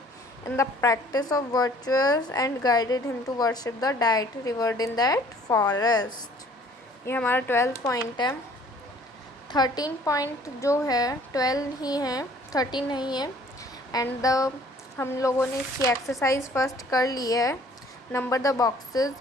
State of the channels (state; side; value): normal; both; correlation 0.55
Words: in the practice of virtues and guided him to worship the deity revered in that forest। ये हमारा 12th point है। 13 point जो है 12 ही है, 13 नहीं है। एंड हम लोगों ने इसकी एक्सरसाइज फर्स्ट कर ली है। नंबर द